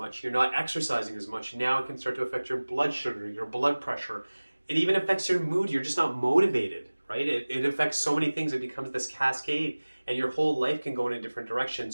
you're not exercising as much. Now it can start to affect your blood sugar, your blood pressure. It even affects your mood. You're just not motivated, right? It affects so many things. It becomes this cascade, and your whole life can go in a different direction.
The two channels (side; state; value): both; inverted; correlation -1.00